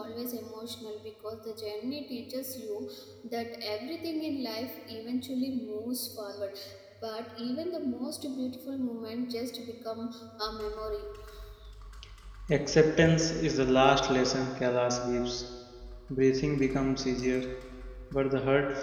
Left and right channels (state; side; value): identical; both; correlation 1.00